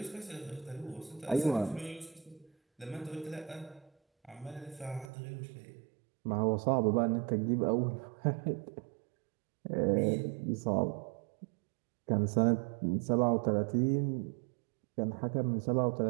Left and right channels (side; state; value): left; drops out; at 5.1 s